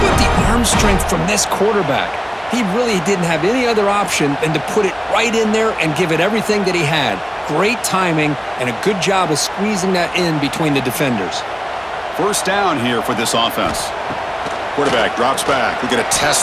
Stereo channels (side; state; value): both; identical; correlation 1.00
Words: the arm strength from this quarterback? He really didn't have any other option than to put it right in there and give it everything that he had. Great timing and a good job of squeezing that in between the defenders. 1st down here for this offense. Quarterback drops back. We're going to